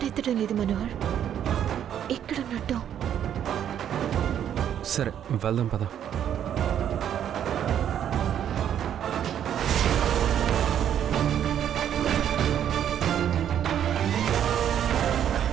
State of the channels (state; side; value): quieter; left; 9.8 dB